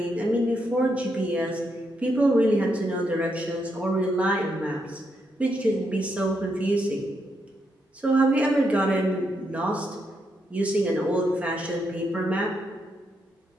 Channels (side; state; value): both; normal; correlation 0.80